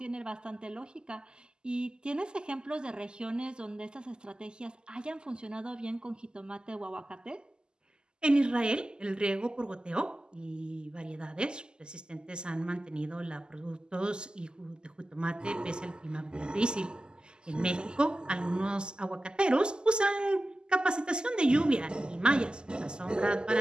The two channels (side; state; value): left; late; 0.047 ms